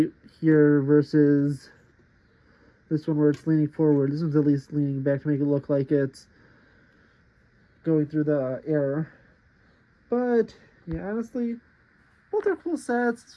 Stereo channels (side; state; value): both; identical; correlation 1.00